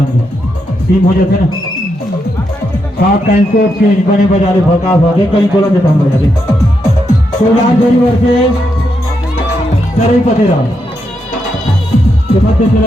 टीम हो जाते ना। सात टाइम को चेंज बने बजा रहे भका भागे कहीं बोला देता हम बजा रहे। तो यार जोरी वर्ष सरई पतेरा के मध्य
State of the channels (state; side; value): normal; both; correlation 0.82